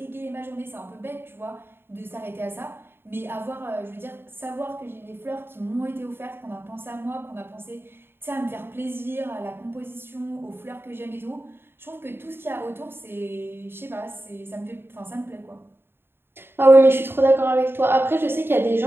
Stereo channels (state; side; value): late; left; 0.11 ms